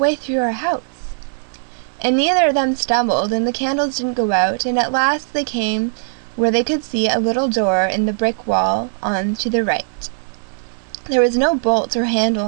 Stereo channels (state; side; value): silent; left; 67 dB below the other